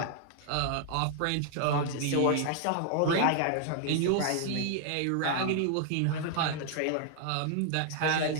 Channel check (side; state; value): both; different; correlation 0.00